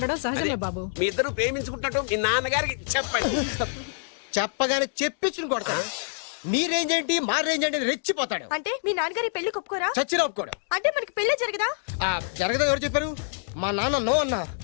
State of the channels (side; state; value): right; silent; digital silence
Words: సహజమే బాబు. మీ ఇద్దరు ప్రేమించుకుంటున్నట్టు మీ నాన్నగారికి చెప్పండి. చెప్పగానే చెప్పించుని కొడతాడు. మీ రేంజ్ ఏంటి, మా రేంజ్ ఏంటి అని రెచ్చిపోతాడు. అంటే మీ నాన్నగారి పెళ్లి ఒప్పుకోరా? చచ్చినా ఒప్పుకోడు. అంటే మనకి పెళ్లి జరగదా? జరగదా? ఎవరు చెప్పారు? మా నాన్న నో అన్నా,